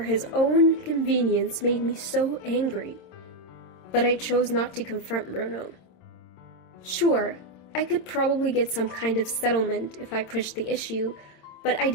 own convenience made me so angry. But I chose not to confront Bruno. Sure, I could probably get some kind of settlement if I pushed the issue, but I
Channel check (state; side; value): late; right; 26 ms